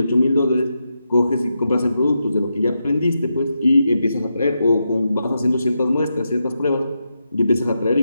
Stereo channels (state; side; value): inverted; both; correlation -0.86